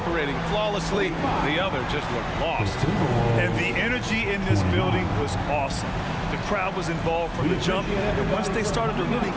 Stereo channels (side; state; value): both; identical; correlation 1.00